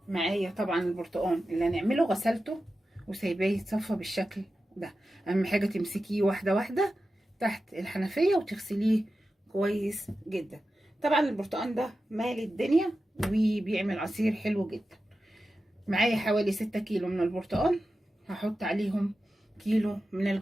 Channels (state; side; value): normal; both; correlation 0.92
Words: معايا طبعا البرتقال اللي هنعمله غسلته وسايباه يتصفى بالشكل ده. اهم حاجه تمسكيه واحده واحده تحت الحنفيه وتغسليه كويس جدا. طبعا البرتقال ده مال الدنيا وبيعمل عصير حلو جدا. معايا حوالي 6 كيلو من البرتقال، هحط عليهم كيلو من